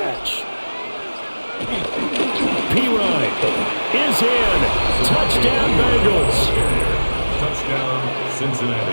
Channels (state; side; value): inverted; both; correlation -1.00